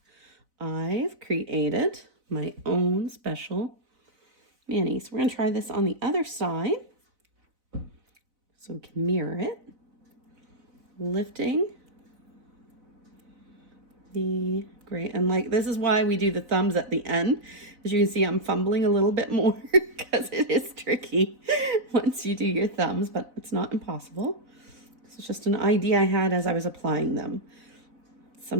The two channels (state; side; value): late; left; 4.0 ms